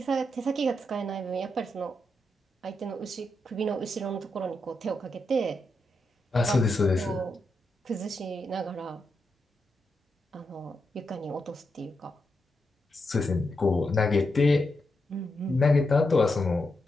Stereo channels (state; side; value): normal; both; correlation 0.85